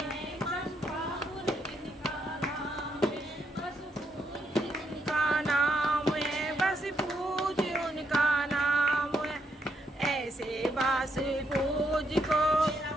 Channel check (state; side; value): normal; both; correlation 0.77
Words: बास पूज को